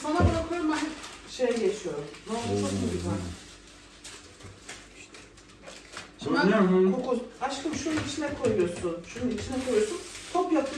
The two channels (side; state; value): both; identical; correlation 1.00